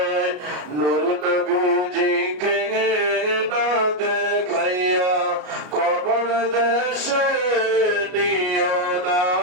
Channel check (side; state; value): left; late; 33 ms